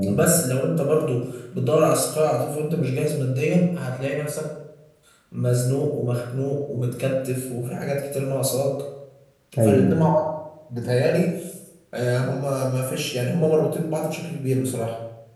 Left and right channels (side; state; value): both; identical; correlation 1.00